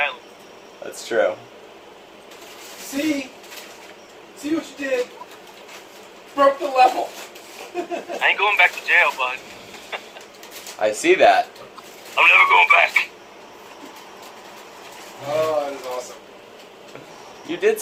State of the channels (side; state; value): both; identical; correlation 1.00